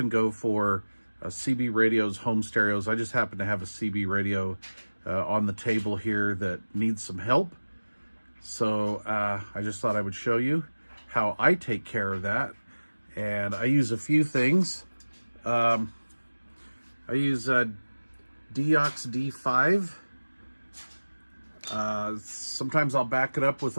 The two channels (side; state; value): both; inverted; correlation -1.00